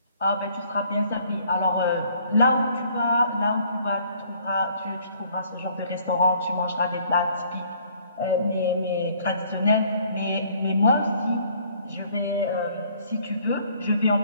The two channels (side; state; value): both; inverted; correlation -0.60